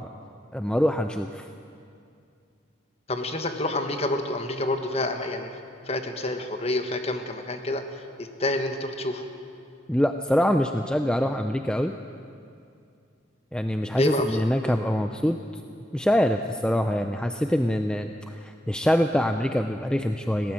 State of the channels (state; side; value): normal; both; correlation 0.78